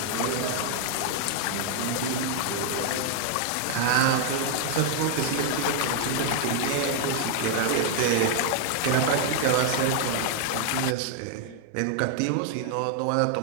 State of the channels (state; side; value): different; both; correlation 0.00